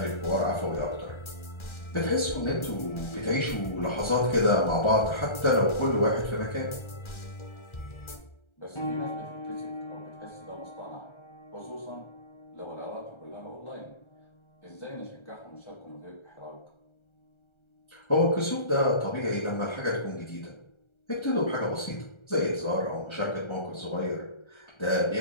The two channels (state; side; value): late; right; 1.3 ms